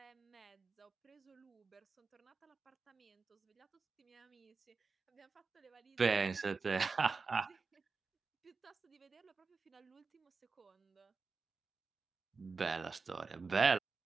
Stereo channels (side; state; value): left; quieter; 4.5 dB